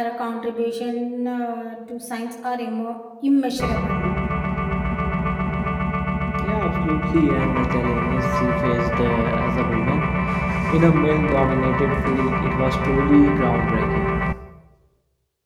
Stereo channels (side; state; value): both; identical; correlation 1.00